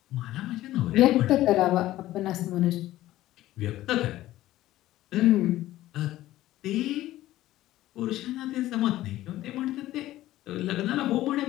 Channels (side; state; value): right; quieter; 15.2 dB